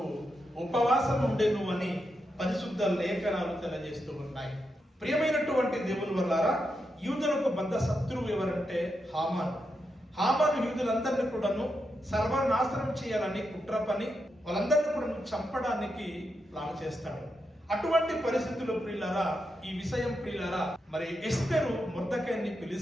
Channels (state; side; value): normal; both; correlation 0.85